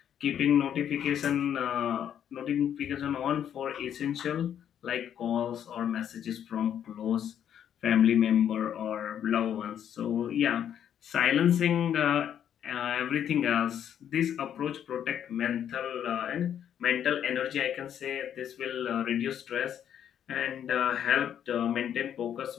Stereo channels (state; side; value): quieter; right; 9.5 dB